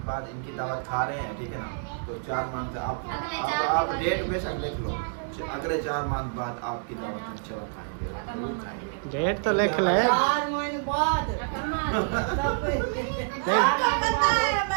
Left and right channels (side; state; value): left; silent; digital silence